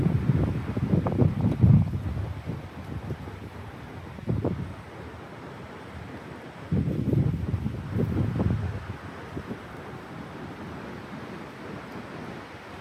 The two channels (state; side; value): identical; both; correlation 1.00